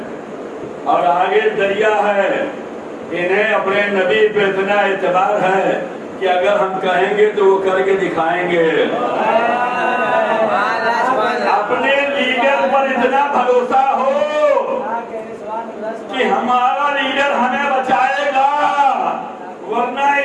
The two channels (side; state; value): both; identical; correlation 1.00